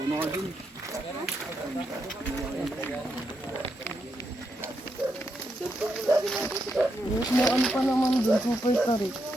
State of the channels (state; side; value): normal; both; correlation 0.82